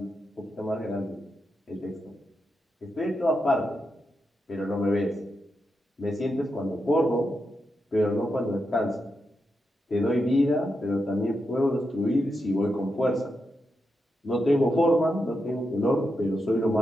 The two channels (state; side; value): normal; both; correlation 0.86